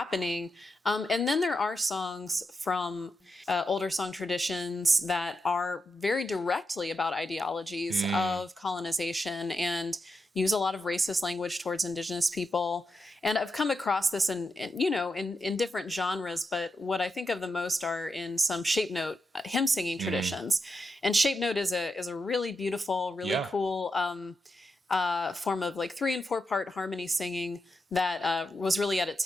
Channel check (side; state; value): both; normal; correlation 0.86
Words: And then there are songs from older song traditions that are very directly about ideologies of colonization and use a lot of racist language towards indigenous people. And I've come across this in different genres, but what I think of the most are in some shape note hymn singing traditions. And shape note is a really beautiful, really cool form of like 3 and 4 part harmony singing that was really at its